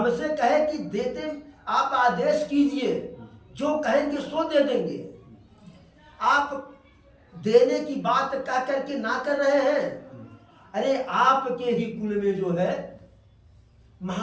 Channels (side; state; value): both; identical; correlation 1.00